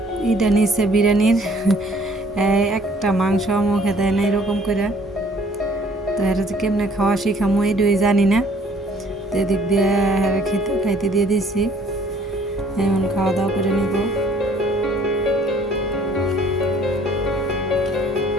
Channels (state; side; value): normal; both; correlation 0.58